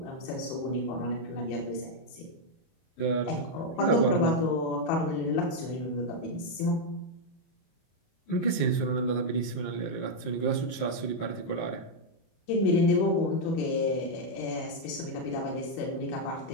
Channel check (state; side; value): late; right; 31 ms